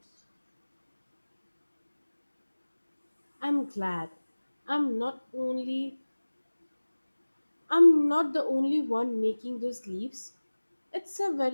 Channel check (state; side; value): inverted; both; correlation -1.00